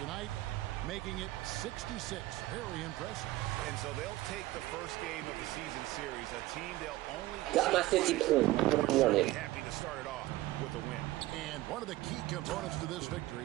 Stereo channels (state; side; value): quieter; left; 17.2 dB